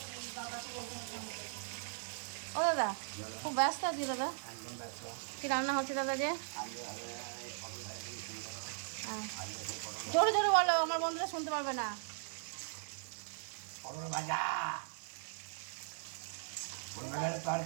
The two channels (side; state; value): left; silent; digital silence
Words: ও দাদা খুব ব্যস্ত আছি দাদা। একদম ব্যস্ত। কি রান্না হচ্ছে দাদা যে? আজকে হবে এই পটল ভাজা থেকে শুরু করো। হ্যাঁ আজকে সেই পটল জোরে জোরে বলো, আমার বন্ধুরা শুনতে পারবে না। পটল ভাজা, ফুলবাগানের